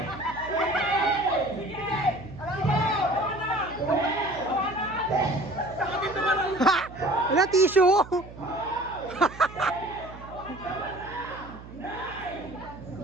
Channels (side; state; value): right; noise; hum, 16 dB below the sound